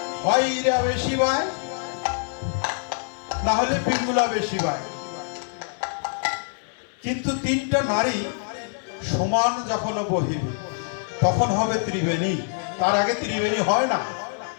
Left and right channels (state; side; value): silent; right; 58 dB below the other